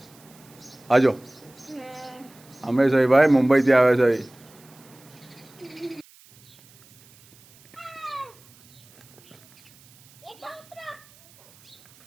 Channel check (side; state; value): right; noise; hiss, 27 dB below the sound